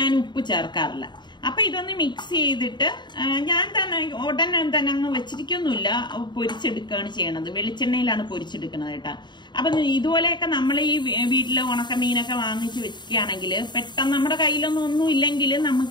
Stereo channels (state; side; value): late; right; 0.22 ms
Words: ഞാൻ ഉപ്പ് ചേർക്കാറില്ല. അപ്പൊ ഇതൊന്ന് മിക്സ് ചെയ്തിട്ട് ഞാൻ ഉടനെ തന്നെ അങ്ങ് വെച്ചിരിക്കൊന്നുമില്ല, പൊരിച്ചെടുക്കുകയാണ് ചെയ്യണത്. വെളിച്ചെണ്ണയിലാണ് പൊരിച്ചെടുക്കുന്നത് കേട്ടോ. അപ്പൊ ഇതുപോലെയൊക്കെ നമ്മൾ ഈ വീട്ടിലെ ഉണക്കമീനൊക്കെ വാങ്ങിച്ച് വെക്കുകയാണെങ്കിൽ പെട്ടെന്ന് നമ്മുടെ കയ്യിലൊന്നും ഒന്നും ഇല്ലെങ്കിൽ